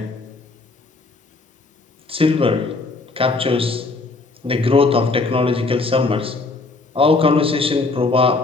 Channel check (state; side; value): quieter; right; 3.6 dB